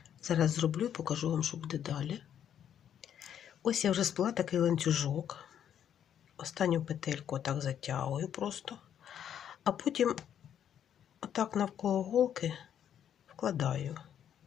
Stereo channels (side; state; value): right; quieter; 9.5 dB